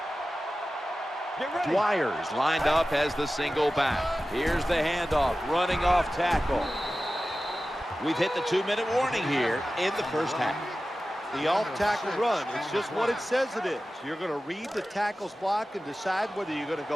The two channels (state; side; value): normal; both; correlation 0.95